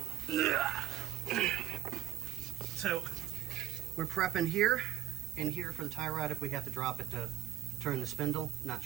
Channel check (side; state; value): left; quieter; 12.9 dB